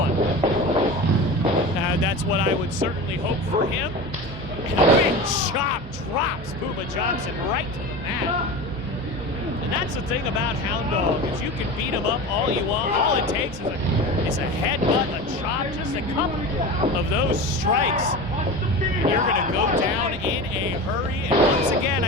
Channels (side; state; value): both; normal; correlation 0.30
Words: That's what I would certainly hope for him. And a big chop drops Puma Johnson right to the mat. And that's the thing about Hound Dog, is you can beat him up all you want. All it takes is a headbutt, a chop, just a couple of those strikes. And you're going to go down in a hurry. And once again,